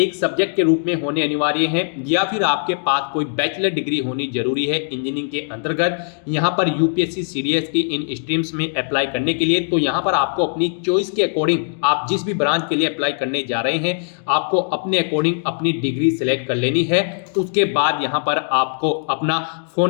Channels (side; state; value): right; silent; digital silence